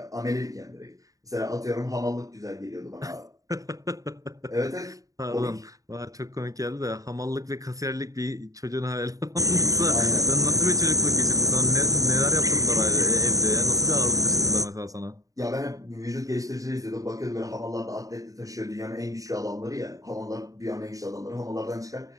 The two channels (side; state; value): left; late; 0.17 ms